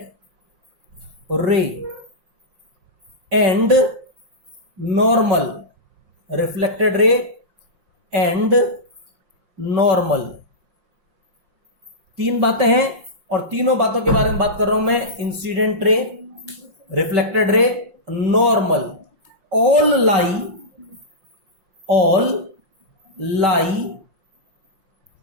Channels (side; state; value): left; late; 5.6 ms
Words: ray and normal, reflected ray and normal. 3 बातें हैं और तीनों बातों के बारे में बात कर रहा हूं मैं। इंसिडेंट रे, रिफ्लेक्टेड रे, normal, all lie